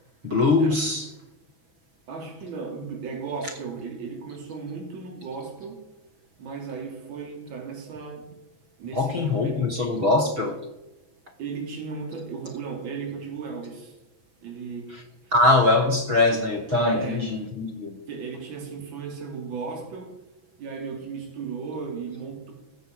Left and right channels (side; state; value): left; late; 5.7 ms